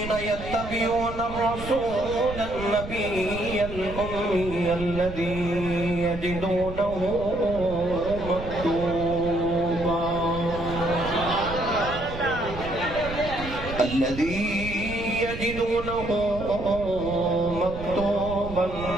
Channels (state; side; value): noise; right; rumble, 10 dB below the sound